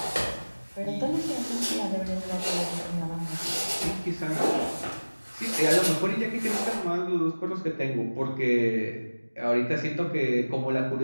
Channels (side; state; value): both; inverted; correlation -1.00